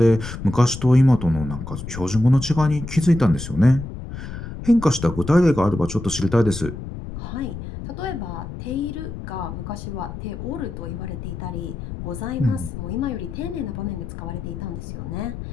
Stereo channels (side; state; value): left; noise; rumble, 9 dB below the sound